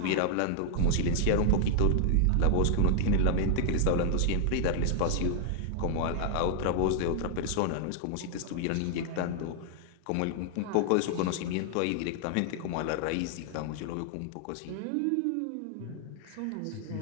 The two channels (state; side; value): different; both; correlation -0.01